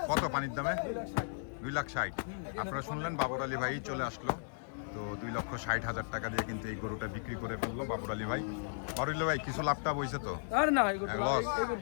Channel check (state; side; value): silent; right; digital silence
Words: কত পানির দামে? 2,60,000। আপনারা শুনলেন বাবর আলী ভাই চলে আসলো, তো 2,60,000 টাকা দিয়ে কিন্তু এই গরুটা বিক্রি করে ফেললো বাবর আলী ভাই। বাবর আলী ভাই কিছু লাভটা বইছে তো? আর না এই করতে লস। এই